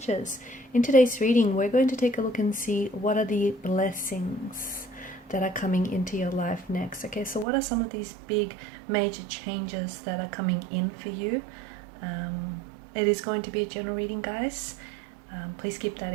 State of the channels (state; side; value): drops out; left; at 7.5 s